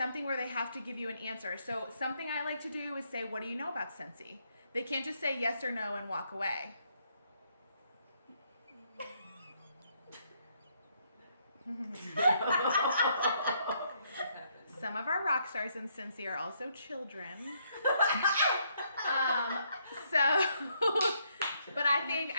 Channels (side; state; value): both; inverted; correlation -0.73